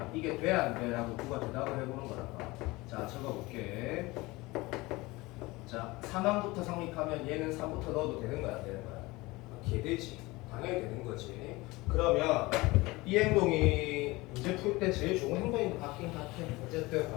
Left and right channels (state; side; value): quieter; right; 21.8 dB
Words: 이게 돼 안 돼? 라고 누가 대답을 해보는 거랄까. 자 적어볼게. 자 3항부터 성립하면 얘는 3부터 넣어도 되는 거야 안 되는 거야? 개되지. 당연히 되는 거지. 그러면 이 행동이 문제 풀 때 제일 좋은 행동인 것 같긴 같아. 어쨌든